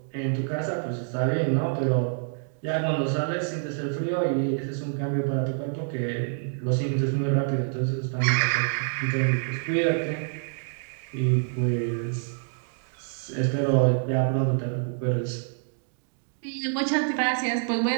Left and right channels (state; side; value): silent; left; digital silence